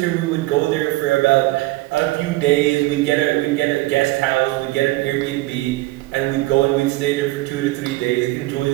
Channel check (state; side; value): quieter; left; 19.7 dB